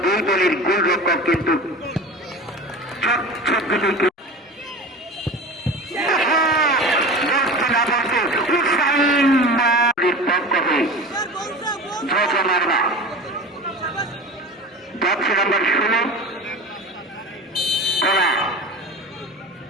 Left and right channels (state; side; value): normal; both; correlation 0.33